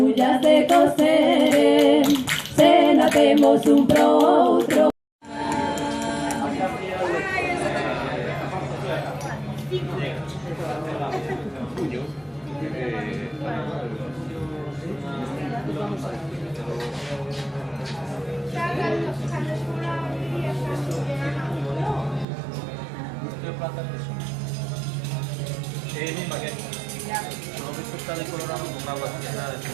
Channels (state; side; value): drops out; left; at 22.2 s